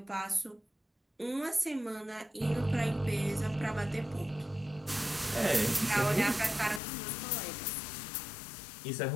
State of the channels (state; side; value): drops out; right; at 6.8 s